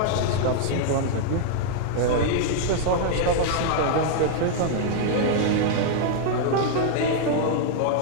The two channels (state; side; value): different; both; correlation -0.01